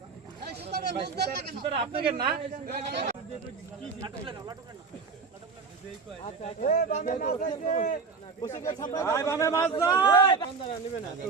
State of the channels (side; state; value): left; quieter; 4.9 dB